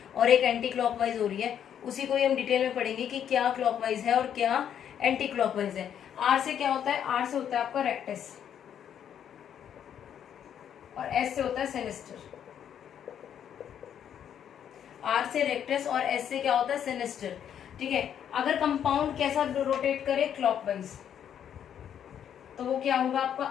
और एक एंटी क्लॉकवाइज हो रही है, उसी को ही हम डिटेल में पढ़ेंगे कि क्या क्लॉकवाइज है और क्या एंटी क्लॉकवाइज है। R से क्या होता है, R से होता है आपका रेक्टस और S से होता है सिनिस्टर। R से रेक्टस और S से क्या होता है, सिनिस्टर, ठीक है। अगर कंपाउंड कैसा रोटेट करे, क्लॉकवाइज, तो वो क्या होगा आपका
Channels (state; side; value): quieter; right; 9.2 dB